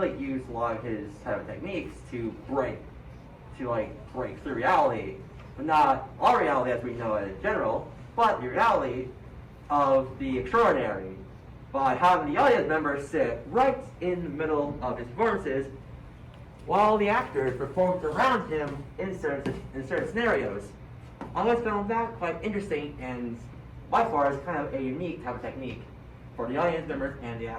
a lot of his type of techniques to break through reality, but not our reality as we know it in general, but the reality of the extraordinary by having the audience members sit right in the middle of his performances while the actors performed around him in certain scenarios. I always found that quite interesting and by far is kind of a unique type of technique for the audience members and the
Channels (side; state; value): both; identical; correlation 1.00